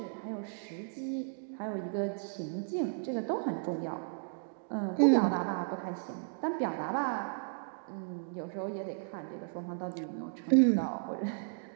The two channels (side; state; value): left; silent; digital silence